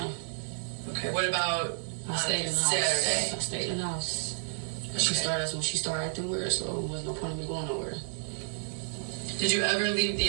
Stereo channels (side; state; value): left; silent; digital silence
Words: Okay, what about I stayed in the house. Saturday? I stayed in the house. Okay. She started acting weird, so it was no point in me going nowhere. Did you ever leave